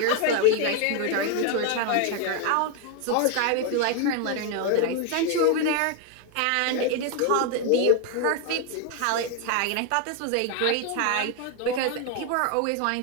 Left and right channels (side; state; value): both; different; correlation 0.01